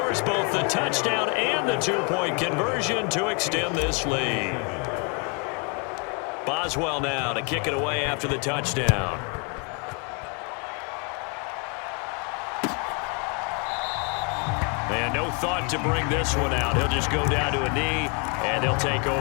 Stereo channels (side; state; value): right; quieter; 35.3 dB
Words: both the touchdown and the 2-point conversion to extend this lead. Boswell now to kick it away after the touchdown. And no thought to bring this one out. He'll just go down to a knee, and they'll take